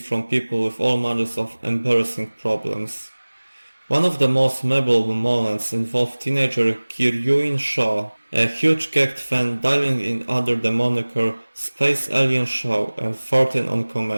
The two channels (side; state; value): both; inverted; correlation -1.00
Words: from people with all manners of embarrassing problems. One of the most memorable moments involved teenager Kiryuin Shaw, a huge GACKT fan dialing in under the moniker Space Alien Shaw and farting on